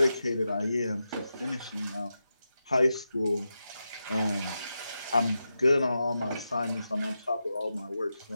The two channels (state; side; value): inverted; both; correlation -0.89